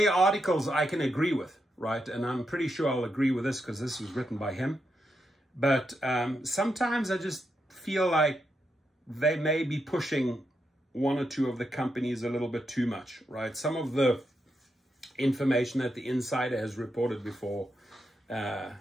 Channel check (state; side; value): normal; both; correlation 0.84